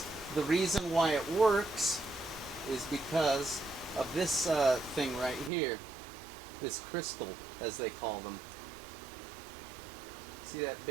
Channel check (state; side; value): drops out; left; at 5.5 s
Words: the reason why it works is because of this thing right here, this crystal, as they call them. See that